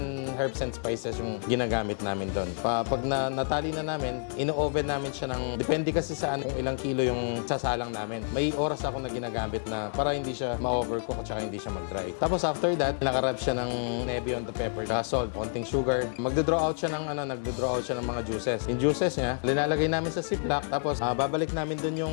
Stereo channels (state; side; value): silent; right; digital silence